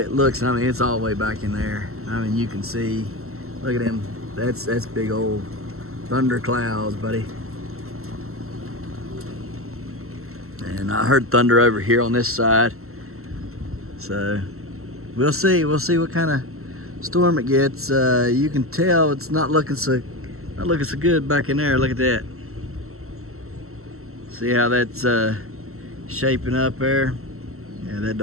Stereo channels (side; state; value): left; late; 0.63 ms